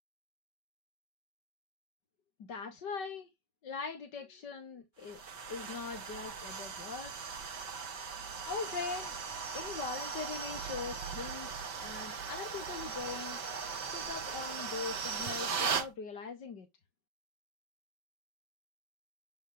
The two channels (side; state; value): right; late; 5.2 ms